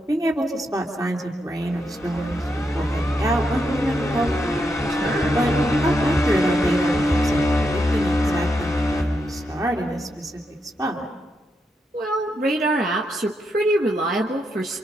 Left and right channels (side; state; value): both; normal; correlation 0.82